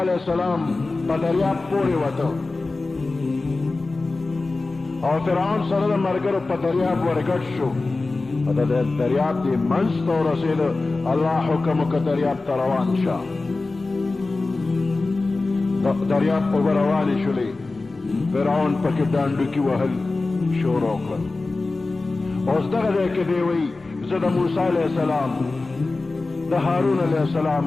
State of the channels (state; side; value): quieter; right; 3.4 dB